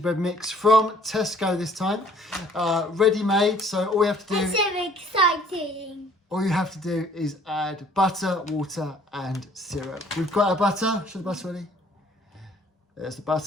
mix from Tesco this time, ready made. So all we have to do, That's so exciting. all you have to do is add butter, water and syrup. We've got our butter. Show the butter, Annie. There's the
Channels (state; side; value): normal; both; correlation 0.57